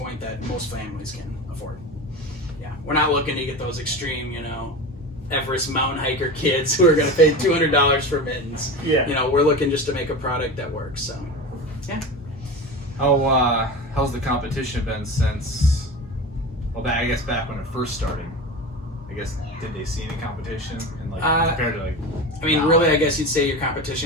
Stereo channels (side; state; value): both; normal; correlation 0.27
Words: that most families can afford. Yeah, we're not looking to get those extreme, Everest mountain hiker kids who are going to pay $200 for mittens. Yeah. We're looking just to make a product that works. So, How's the competition been since? Well, I guess back when it first started. I guess, did they see any competition and compared to I mean, really, I guess you'd say your